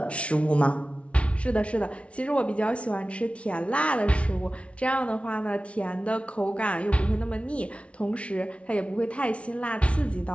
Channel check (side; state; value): right; late; 0.062 ms